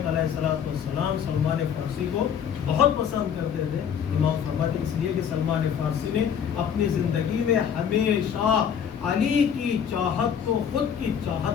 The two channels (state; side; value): quieter; right; 8.1 dB